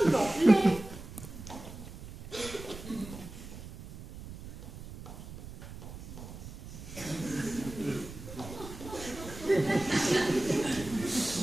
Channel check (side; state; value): right; noise; rumble, 13 dB below the sound